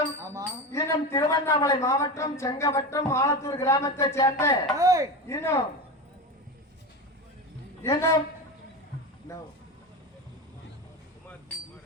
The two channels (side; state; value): both; normal; correlation 0.23